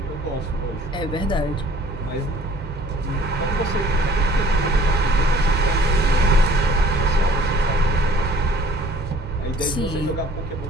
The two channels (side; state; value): both; normal; correlation 0.54